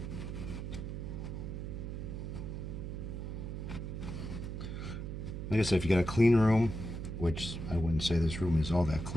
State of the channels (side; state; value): right; noise; hum, 5 dB below the sound